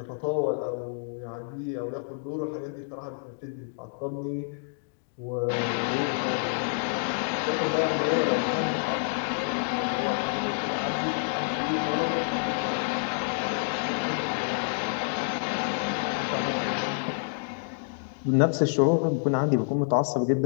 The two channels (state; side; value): silent; right; digital silence